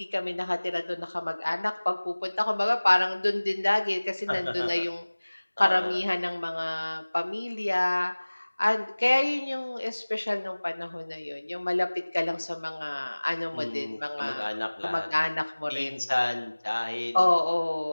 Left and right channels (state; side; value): inverted; both; correlation -1.00